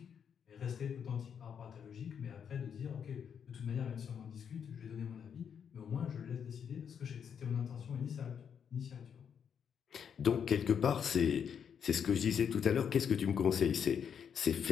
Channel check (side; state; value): right; quieter; 7.6 dB